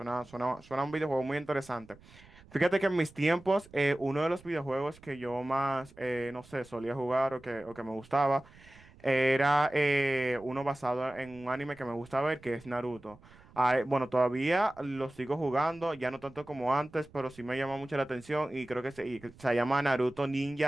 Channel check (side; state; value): right; noise; rumble, 24 dB below the sound